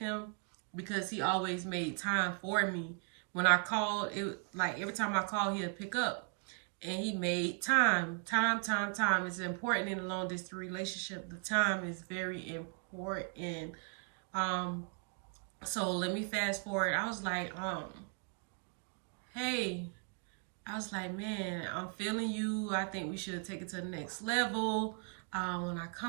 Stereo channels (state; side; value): quieter; left; 40.0 dB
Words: because he always made time for me. When I called, it like every time I called, he'd pick up. And he made time. Time. It's important in a long distance relationship. The time is very important. Um, so let me fast forward. I was like, hey, I was like, man, I'm feeling you. I think we should take it to the next level. When I